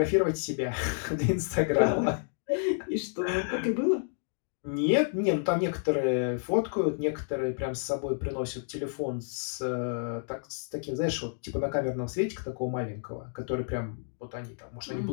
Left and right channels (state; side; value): silent; right; digital silence